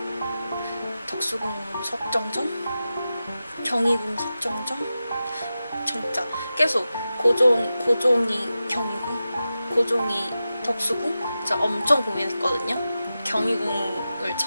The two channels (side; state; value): both; inverted; correlation -0.92